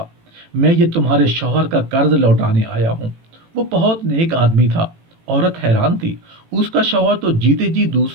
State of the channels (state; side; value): late; left; 18 ms